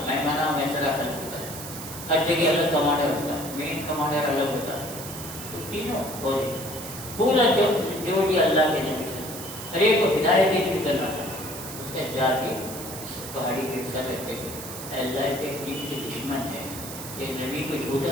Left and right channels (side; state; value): right; noise; hiss, 10 dB below the sound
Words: میں منا میں سرا خلف ہوتا ہے، ہر جگہ الگ کمانڈر ہوتا ہے، مین کمانڈر الگ ہوتا ہے، تو تینوں فوجی پورا جو بھی اللہ کے نبی سے ہر ایک کو ہدایت دیتی کرنا تھا، اس نے جا کے پہاڑی کے سر رکھتے تھے، اللہ کے دین کے دشمن ہے، یہ نبی کو